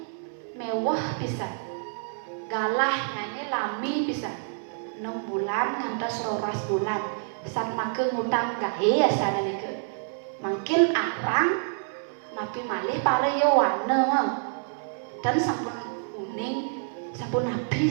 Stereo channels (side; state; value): left; silent; 60 dB below the other